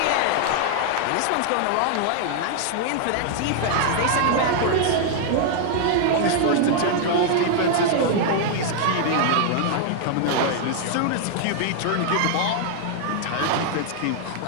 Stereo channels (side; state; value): both; different; correlation -0.01